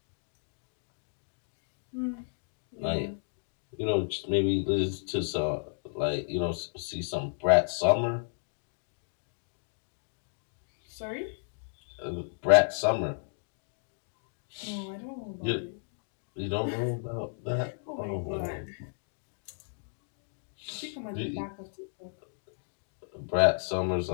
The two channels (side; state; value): right; silent; digital silence